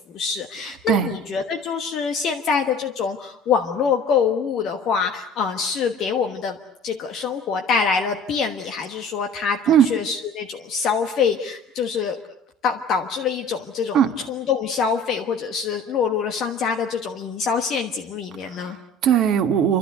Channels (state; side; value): normal; both; correlation 0.44